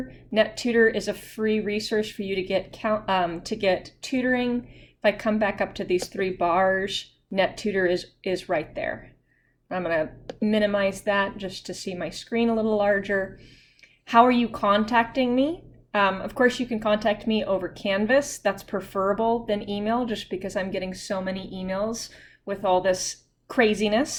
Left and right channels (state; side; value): identical; both; correlation 1.00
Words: NetTutor is a free resource for you to get tutoring. If I come back up to these 3 bars, NetTutor is right there. I'm going to minimize that just to see my screen a little larger. How are you contacting me? Of course, you can contact me over Canvas. That's preferable than email, just because I'm getting so many emails with all this